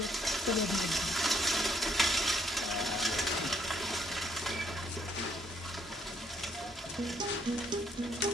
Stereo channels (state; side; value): normal; both; correlation 0.69